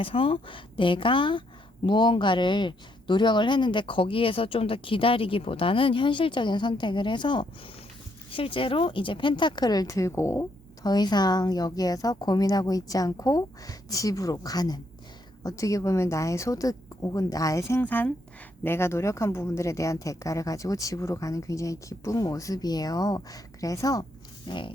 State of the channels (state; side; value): normal; both; correlation 0.74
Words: 내가 무언가를 노력을 했는데 거기에서 좀 더 기다리기보다는 현실적인 선택을 해서 실제로 이제 펜타클을 들고 더 이상 여기에서 고민하고 있지 않고 집으로 가는, 어떻게 보면 나의 소득 혹은 나의 생산, 내가 노력한 부분들에 대한 대가를 가지고 집으로 가는 굉장히 기쁜 모습이에요. 그래서